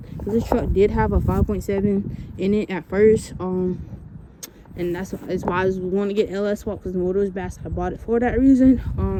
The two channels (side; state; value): both; identical; correlation 1.00